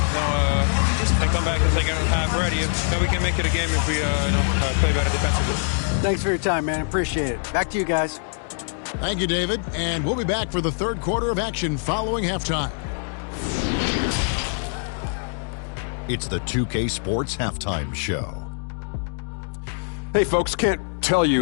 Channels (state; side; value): silent; right; digital silence